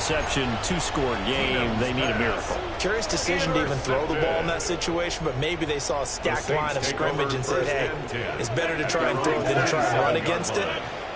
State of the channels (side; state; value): both; identical; correlation 1.00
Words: 2-score game, they need a miracle. Curious decision to even throw the ball in that situation, but maybe they saw a stacked line of scrimmage and said, hey, it's better to try and throw than to try and run against it.